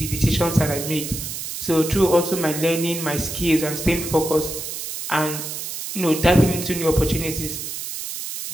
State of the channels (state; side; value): noise; right; hiss, 6 dB below the sound